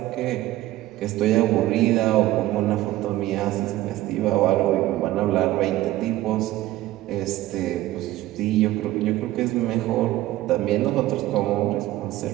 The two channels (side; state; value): left; quieter; 15.7 dB